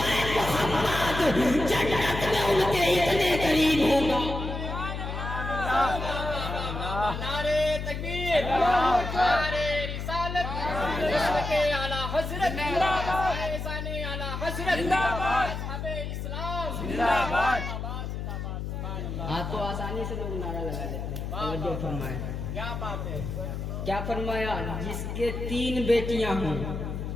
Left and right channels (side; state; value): left; noise; hum, 5 dB below the sound